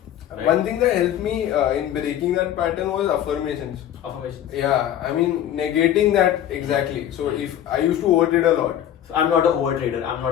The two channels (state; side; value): quieter; right; 11.0 dB